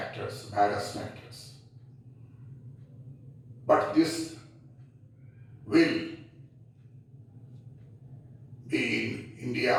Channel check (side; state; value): both; identical; correlation 1.00